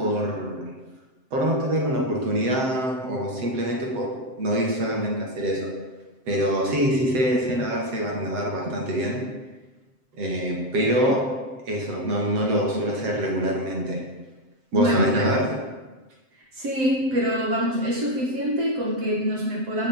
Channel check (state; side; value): late; left; 7.7 ms